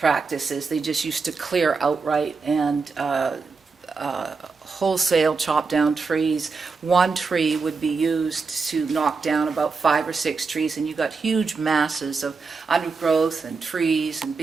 They just used to clear outright and wholesale chop down trees. One tree would be used to knock down about 5 or 6 trees, and you got huge masses of undergrowth and trees and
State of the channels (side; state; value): left; quieter; 4.6 dB